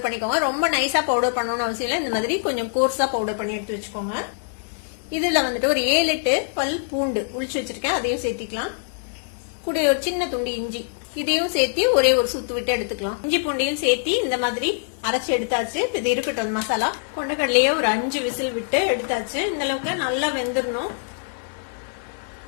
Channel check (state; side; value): silent; right; 59 dB below the other